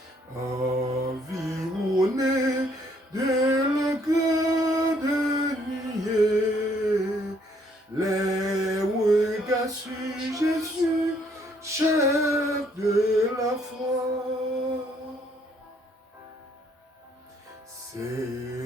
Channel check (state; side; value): normal; both; correlation 0.66